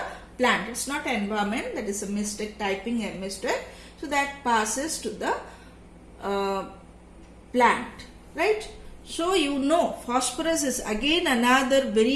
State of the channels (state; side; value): identical; both; correlation 1.00